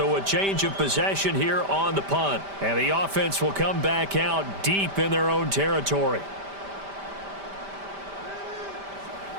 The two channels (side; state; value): left; late; 5.1 ms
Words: a change of possession here on the punt. And the offense will come back out deep in their own territory.